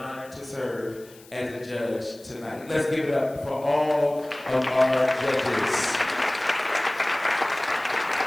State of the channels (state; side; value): noise; left; hiss, 24 dB below the sound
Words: to serve as a judge tonight. Let's give it up for all of our judges.